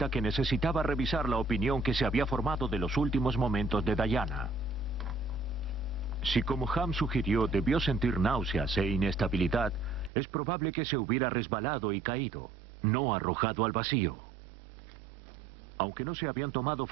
que necesitaba revisar la opinión que se había formado de los últimos momentos de Diana. Si, como Ham sugirió, debió sentir náuseas e inestabilidad, es probable que se hubiera resbalado y caído, no arrojado al vacío. Aunque no se habían tomado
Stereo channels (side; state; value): left; drops out; at 10.1 s